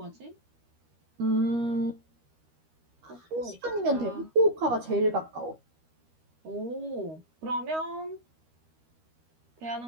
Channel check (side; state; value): left; late; 13 ms